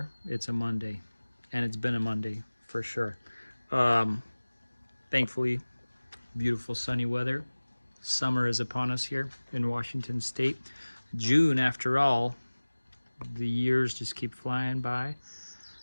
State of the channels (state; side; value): inverted; both; correlation -1.00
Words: it's a Monday, and it's been a Monday for sure. Thankfully, beautiful sunny weather. Summer is upon us here in Washington State. June, after all, the years just keep flying by